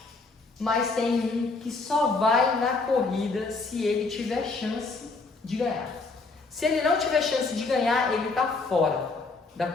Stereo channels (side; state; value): right; quieter; 3.8 dB